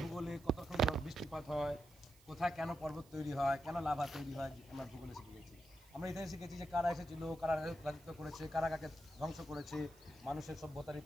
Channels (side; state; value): right; noise; hiss, 26 dB below the sound